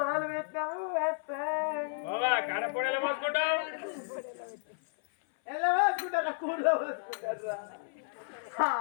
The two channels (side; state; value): right; silent; 56 dB below the other